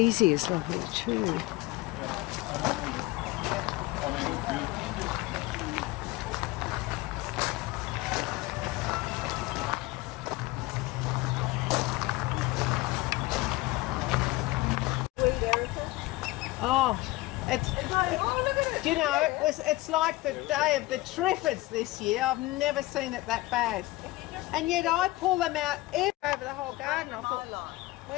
is lovely too. Oh, it's. Do you know, it's like the day of the Triffids this year. I've never seen it that bad. And yet I pull them out over the whole garden. I thought,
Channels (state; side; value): quieter; right; 19.8 dB